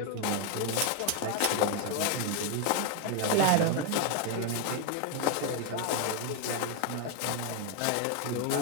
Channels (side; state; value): both; different; correlation 0.01